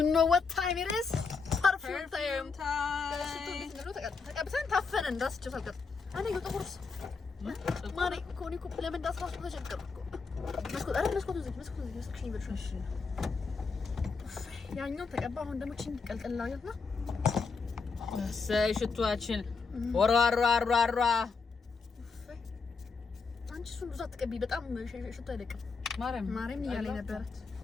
know what time it is perfume time ተቀብተን ታፈነ እንዳስጨው ታልቀጥ እኔ ጥቁርስ ማሪ ኮኒ ኮፕ ለምን እንዳስራሱ ተቸገርኩ መስኮት ዝግ እሺ ያኛው ተቀባ አሁን ደግሞ ቺን ቀልቀላውና ሰይ ሽቷችን ወራራራራ አንቺ እሱን ብዙ አትቀቢ በጣም ሽቶ አይለቅም ማርያም እያለኝ ነበረት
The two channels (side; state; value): right; quieter; 4.8 dB